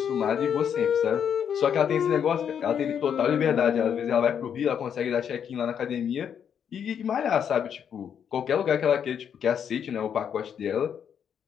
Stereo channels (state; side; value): quieter; right; 8.2 dB